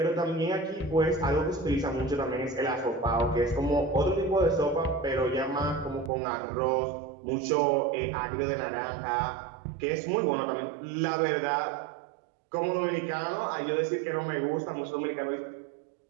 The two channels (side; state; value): left; drops out; at 6.1 s